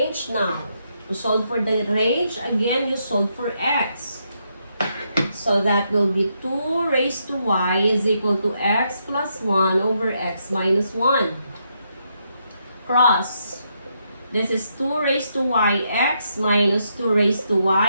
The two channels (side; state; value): both; inverted; correlation -0.79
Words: now. To solve for the range, again, you solve for x. So that will be 2 raised to y is equal to x plus 1 over x minus 1. Cross. This is 2 raised to y x minus 2 raised to